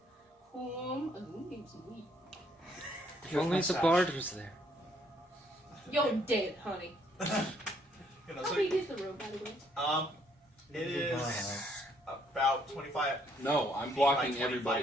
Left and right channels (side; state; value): both; normal; correlation 0.68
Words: If only the bard was there. You're dead, honey. You know, How so, big is the room, by the way? it is about 25. No, I'm feet blocking by 25